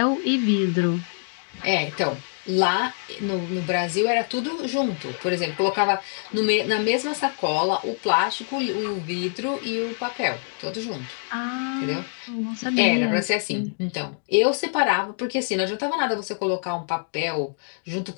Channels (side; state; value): right; silent; 59 dB below the other